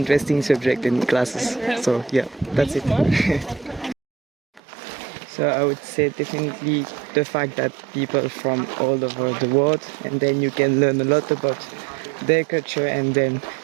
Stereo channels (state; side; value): drops out; left; at 4.6 s